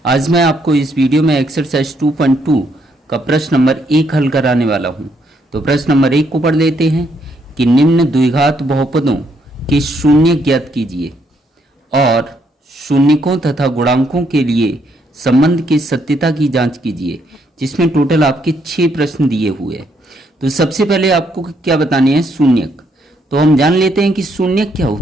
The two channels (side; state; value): both; normal; correlation 0.73